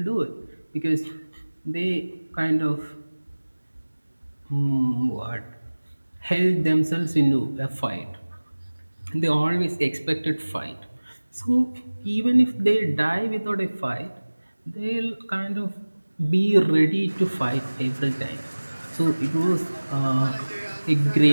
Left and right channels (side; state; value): both; inverted; correlation -1.00